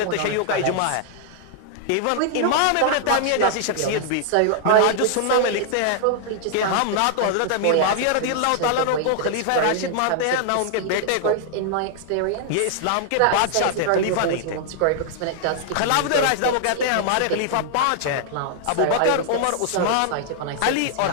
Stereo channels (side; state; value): both; different; correlation -0.01